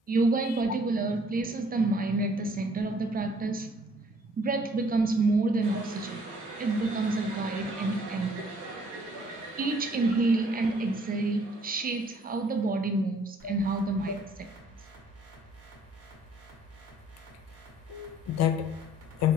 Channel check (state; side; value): normal; both; correlation 0.60